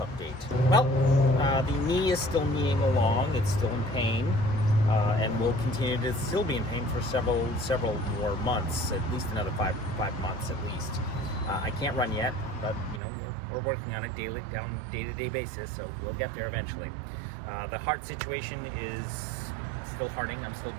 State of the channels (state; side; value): drops out; left; at 13.0 s